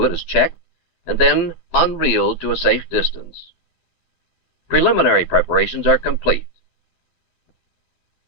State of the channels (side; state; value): right; late; 12 ms